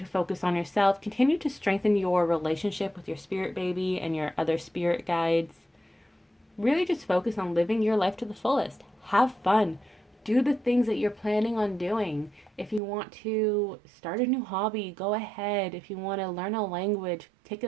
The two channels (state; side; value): drops out; left; at 12.8 s